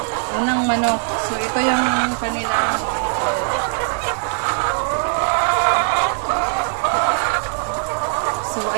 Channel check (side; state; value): left; silent; digital silence